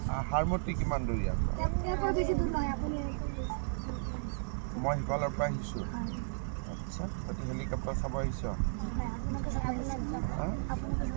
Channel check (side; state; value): left; silent; digital silence